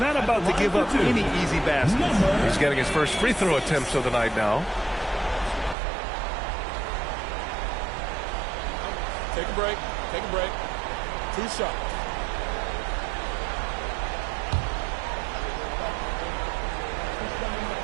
about to give up any easy baskets. He's getting his first free throw attempts of the night now. Take a break. Take a break. 2 shots.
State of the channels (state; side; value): drops out; left; at 5.8 s